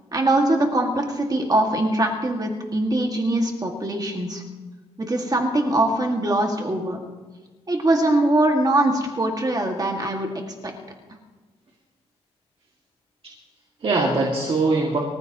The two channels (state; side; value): normal; both; correlation 0.73